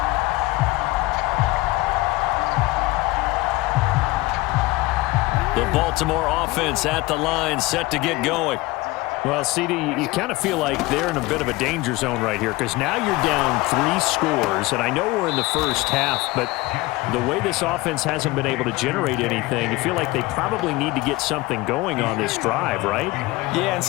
The Baltimore offense at the line, set to get going. Well, CD, you kind of feel like they're in a bit of a danger zone right here because now you're down 3 scores, and I know we're in the first half, but the way this offense hasn't been able to generate anything, you feel like they probably need to get something going on this drive, right? Yeah, and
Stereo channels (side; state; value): right; quieter; 20.8 dB